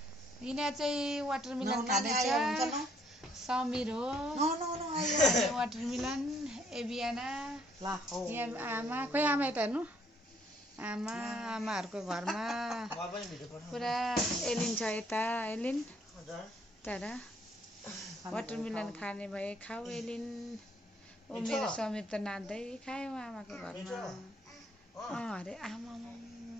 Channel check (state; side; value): normal; both; correlation 0.66